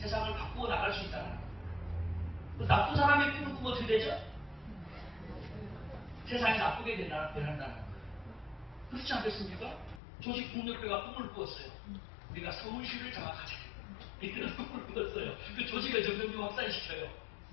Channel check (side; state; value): right; drops out; at 10.0 s